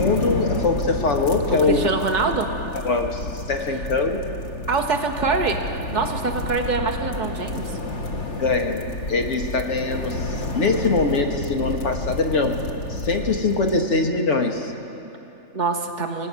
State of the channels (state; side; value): late; right; 3.4 ms